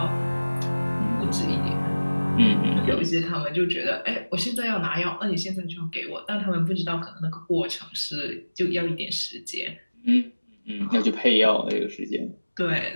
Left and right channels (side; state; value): both; inverted; correlation -1.00